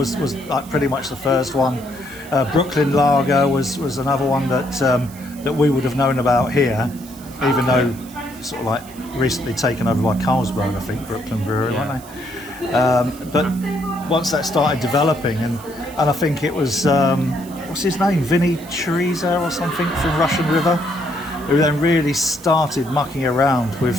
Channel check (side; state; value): right; noise; hiss, 20 dB below the sound